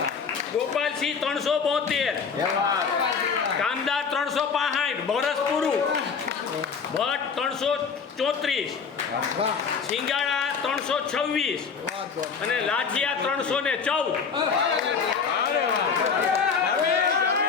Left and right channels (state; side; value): quieter; right; 5.9 dB